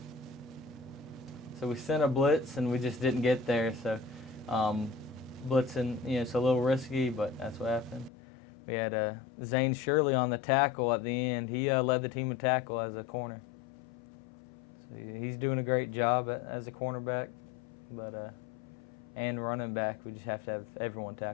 So we sent a blitz, and we just didn't get there. So blitzing, it's a little risky, but that's what happened. We had Zane Shirley on the tackle at the end. He led the team in tackle as a corner. So he's doing a great job as a cornerback, but and running back. We just have to have everyone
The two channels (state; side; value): drops out; right; at 8.1 s